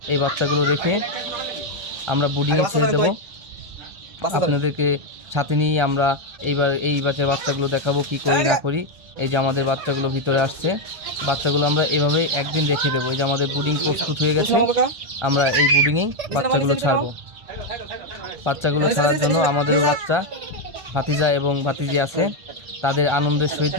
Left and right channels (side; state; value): left; late; 1.3 ms